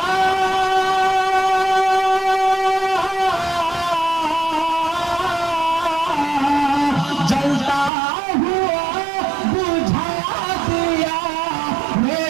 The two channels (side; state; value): left; drops out; at 7.9 s